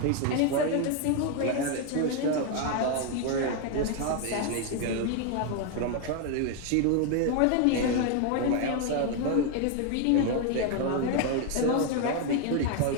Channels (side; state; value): both; different; correlation 0.01